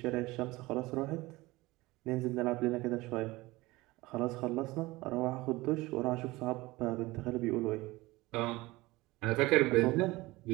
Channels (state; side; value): quieter; left; 20.5 dB